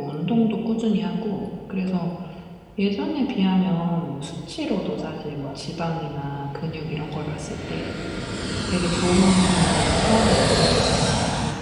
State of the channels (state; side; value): identical; both; correlation 1.00